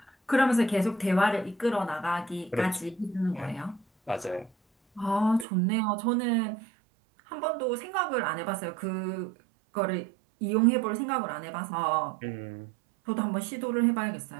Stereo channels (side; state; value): left; drops out; at 5.5 s